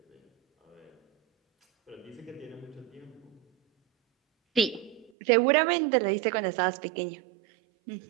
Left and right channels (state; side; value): drops out; left; at 5.1 s